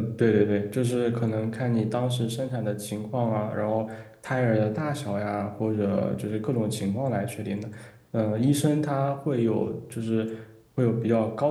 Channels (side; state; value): both; identical; correlation 1.00